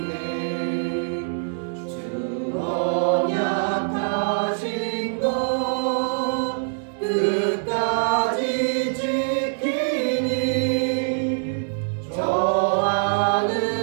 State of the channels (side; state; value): left; silent; 62 dB below the other